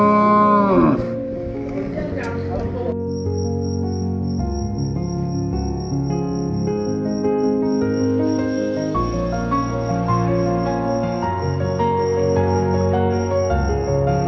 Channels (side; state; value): both; identical; correlation 1.00